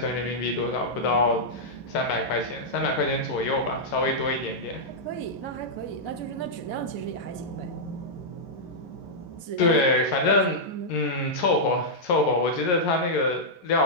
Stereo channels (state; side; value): late; right; 11 ms